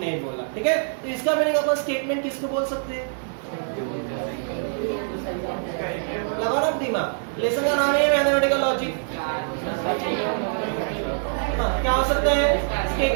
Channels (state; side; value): silent; left; 62 dB below the other